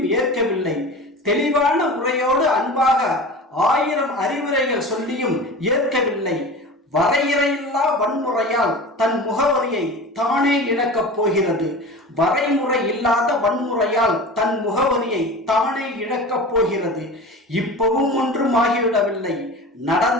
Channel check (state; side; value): normal; both; correlation 0.34